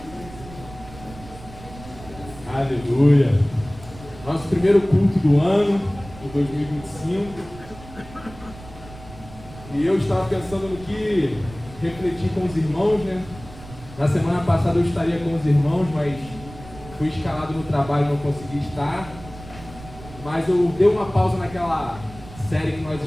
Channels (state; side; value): noise; right; rumble, 17 dB below the sound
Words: Aleluia. Nosso primeiro culto do ano, de 2025. E eu estava pensando no que refletir com os irmãos, né? Na semana passada eu estaria com os irmãos, mas fui escalado no trabalho e não consegui estar. Mas eu dei uma pausa naquela série que nós